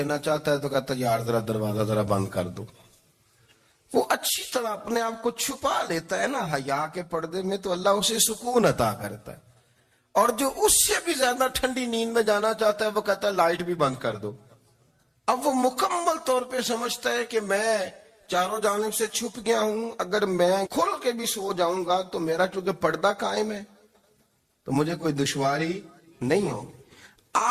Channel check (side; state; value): both; identical; correlation 1.00